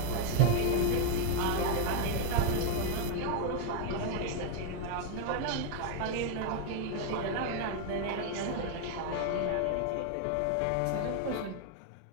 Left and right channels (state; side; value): different; both; correlation 0.00